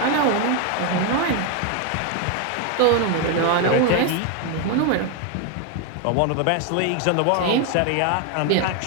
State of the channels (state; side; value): different; both; correlation 0.01